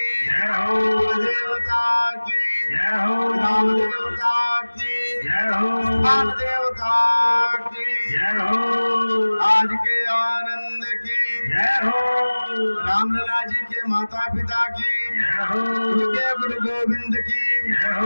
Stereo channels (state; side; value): inverted; both; correlation -1.00